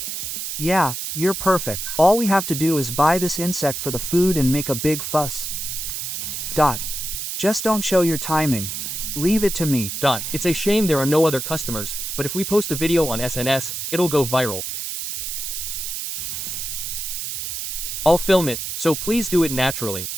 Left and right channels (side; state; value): right; noise; hiss, 5 dB below the sound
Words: Yeah, you're perfect. All we have to do is buy this insect for the food and make a big fuss. Just don't show your timing. Leave it to me. It's a shame there are no other customers, but if we post a video on SNS, it'll go viral. I'll film it, so please do it naturally.